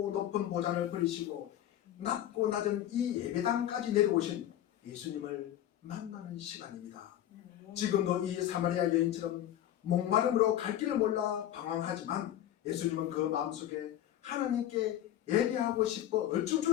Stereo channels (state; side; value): quieter; right; 12.0 dB